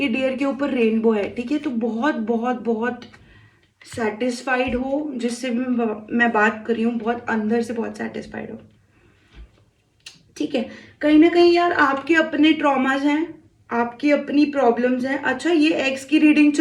डियर के ऊपर रेनबो है, ठीक है। तो बहुत बहुत बहुत सेटिस्फाइड हो जिससे भी मैं बात कर रही हूँ, बहुत अंदर से बहुत सेटिस्फाइड हो, ठीक है। कहीं ना कहीं यार आपके अपने ट्रॉमाज हैं, आपकी अपनी प्रॉब्लम्स हैं। अच्छा, ये एक्स की रीडिंग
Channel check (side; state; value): both; identical; correlation 1.00